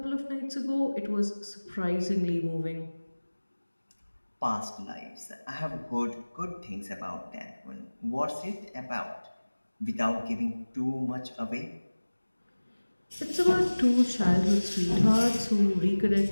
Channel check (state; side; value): inverted; both; correlation -1.00